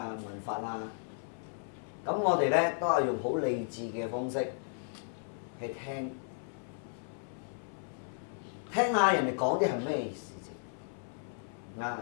聞法啊，咁我哋咧都係用好理智嘅方式去聽下人哋講啲係咩事情啊，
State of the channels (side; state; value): right; silent; 55 dB below the other